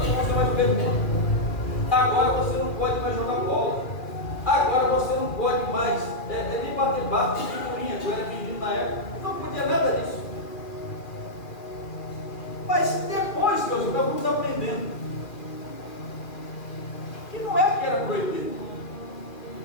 não vai mais pergunta, agora você não pode mais jogar bola, agora você não pode mais nem bater bate de figurinha, que eu era menino na época, não podia nada disso. Mas depois que nós estávamos aprendendo que não é que era proibido,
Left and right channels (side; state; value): right; late; 2.4 ms